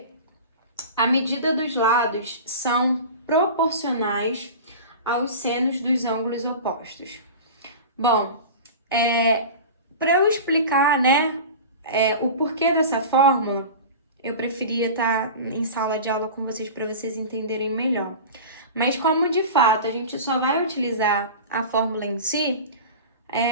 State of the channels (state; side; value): inverted; both; correlation -0.33